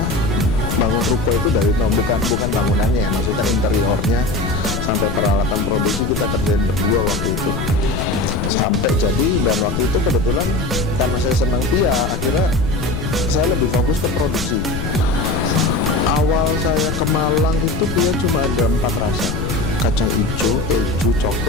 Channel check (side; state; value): left; noise; rumble, 5 dB below the sound